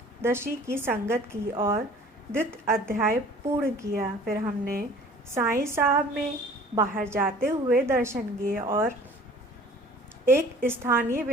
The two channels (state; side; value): normal; both; correlation 0.49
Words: की संगत की और द्वितीय अध्याय पूर्ण किया। फिर हमने साईं साहब में बाहर जाते हुए दर्शन किए और एक स्थानीय